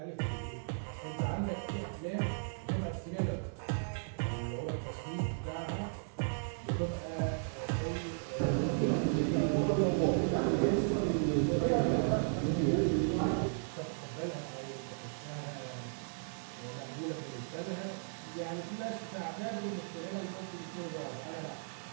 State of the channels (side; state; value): left; silent; digital silence